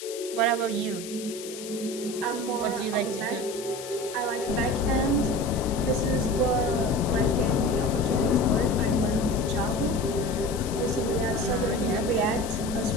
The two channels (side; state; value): left; noise; hiss, 12 dB below the sound